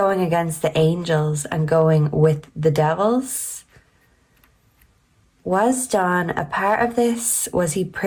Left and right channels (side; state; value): both; identical; correlation 1.00